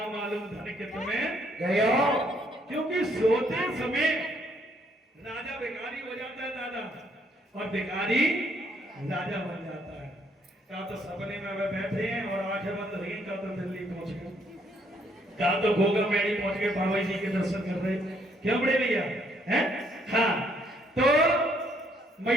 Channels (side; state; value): both; normal; correlation 0.69